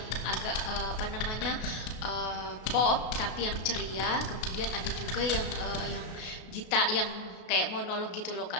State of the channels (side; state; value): right; late; 33 ms